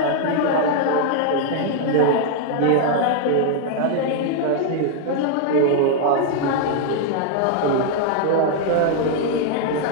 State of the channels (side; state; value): both; different; correlation 0.00